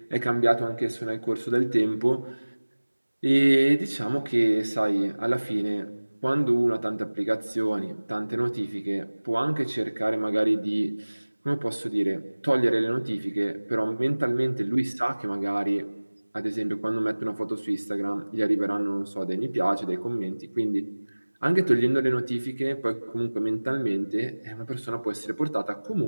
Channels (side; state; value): both; inverted; correlation -1.00